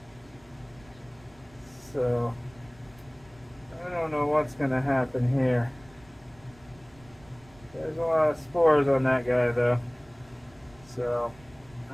So I don't know what's going to happen here. There's a lot of spores on that guy though. So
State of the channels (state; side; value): noise; right; rumble, 26 dB below the sound